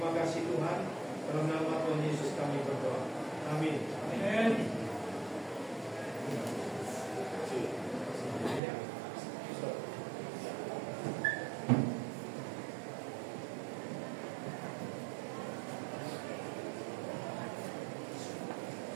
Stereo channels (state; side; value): drops out; left; at 8.6 s